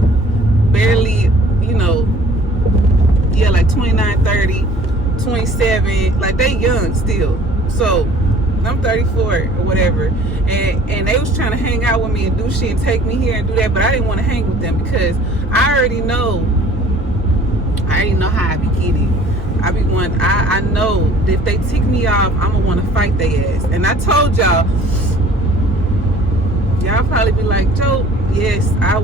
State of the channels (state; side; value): normal; both; correlation 0.51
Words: barely, you know, yeah, like 29, 30, 27, like they young still. So I'm 34 or whatever, and they was trying to hang out with me and do shit and take me here and do that, but I didn't want to hang with them because I already know how I be getting. I know that if they tick me off, I'm gonna want to fight their ass. And I told y'all probably be like, Joe, yes, I